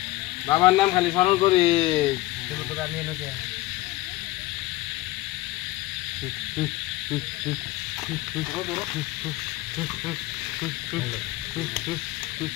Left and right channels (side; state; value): right; quieter; 18.7 dB